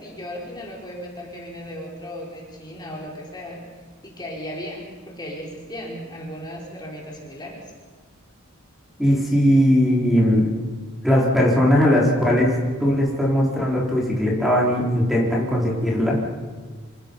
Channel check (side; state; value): both; normal; correlation 0.74